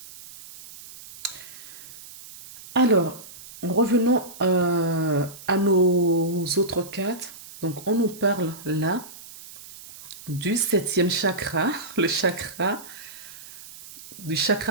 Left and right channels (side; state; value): right; noise; hiss, 17 dB below the sound